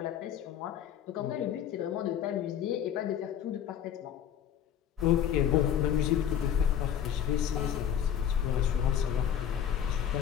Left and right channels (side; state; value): right; quieter; 9.4 dB